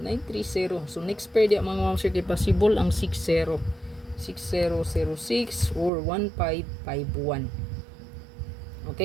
930. So, next pair diya, mga Ma'am Sir, kay possible ang 60. 6006 or 1551.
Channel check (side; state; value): left; drops out; at 5.9 s